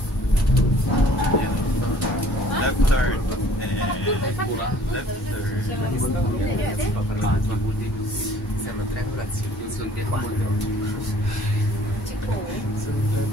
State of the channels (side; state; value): both; normal; correlation 0.55